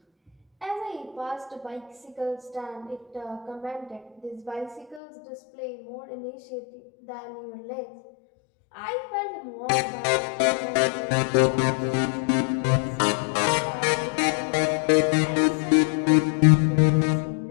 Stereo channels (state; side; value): drops out; right; at 5.0 s